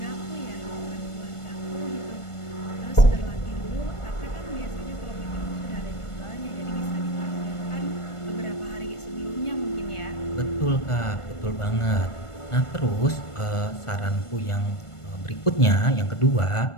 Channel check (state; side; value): late; right; 1.5 ms